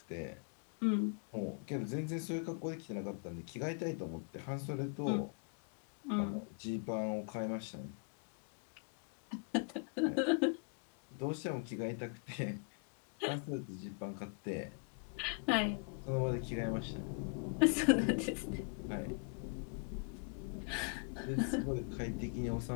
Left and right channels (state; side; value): quieter; right; 37.9 dB